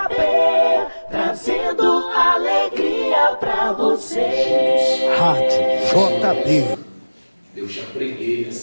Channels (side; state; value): both; inverted; correlation -1.00